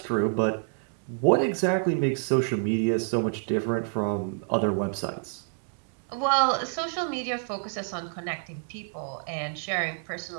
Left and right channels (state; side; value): silent; left; 59 dB below the other